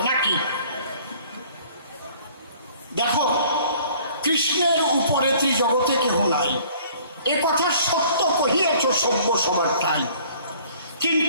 নাকি? দেখো, কৃষ্ণের উপরে ত্রিজগতে কেহ নাই, এ কথা সত্য কহিয়াছ সভ্য সবারটাই,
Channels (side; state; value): both; inverted; correlation -0.54